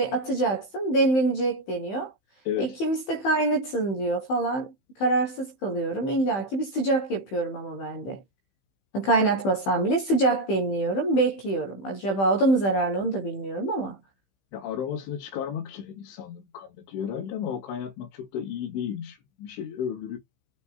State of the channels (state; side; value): late; right; 15 ms